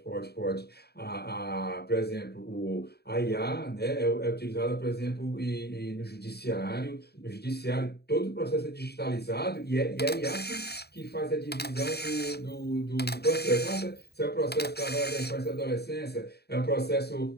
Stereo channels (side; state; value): right; late; 0.47 ms